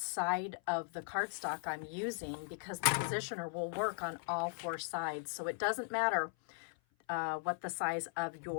side of the cardstock I'm using, because the positioner will work on all four sides. So it doesn't matter what the size of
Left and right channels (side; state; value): right; silent; 52 dB below the other